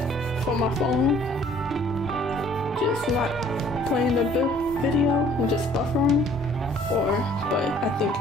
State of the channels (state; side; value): normal; both; correlation 0.57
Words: for my phone just not playing the video and just buffering, or, but I think